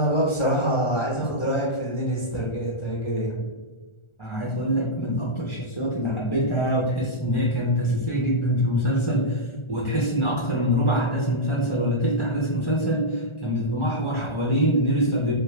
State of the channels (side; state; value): right; late; 1.4 ms